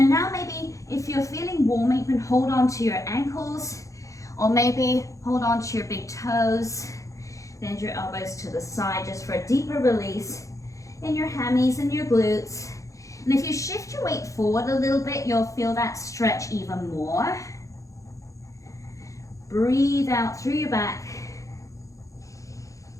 now maybe if you're feeling warm, you can hold on to your ankles or maybe hold on to your big toes. Bend your elbows to the side just for a deeper release in your hammies and your glutes. And if you shift your weight forward a little bit, you'll feel that stretch even more. Breathe out through your back.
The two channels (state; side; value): late; right; 0.15 ms